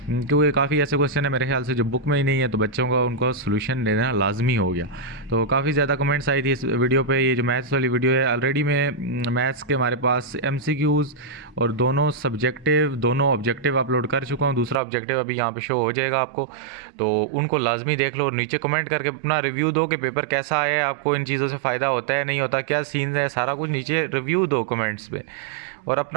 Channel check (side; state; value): left; drops out; at 14.8 s